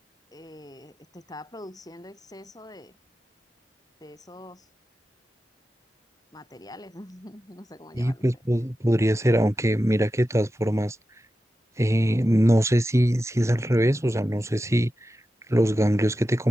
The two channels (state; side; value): normal; both; correlation 0.92